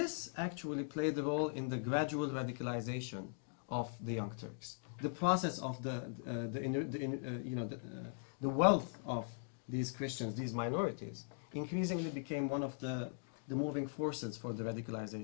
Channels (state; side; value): silent; right; digital silence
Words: actually played a role in the gradual radicalization of the Young Turks. The process of the wealth of these Christians, these minorities, increasingly became one of the moving forces for the